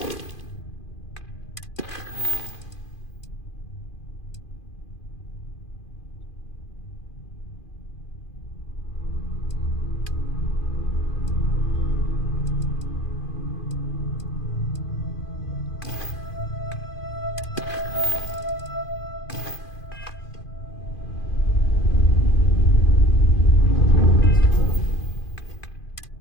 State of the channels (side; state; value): right; late; 2.5 ms